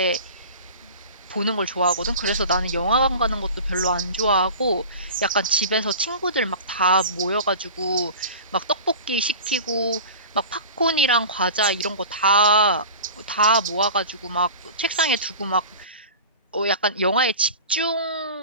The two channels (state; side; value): inverted; both; correlation -0.36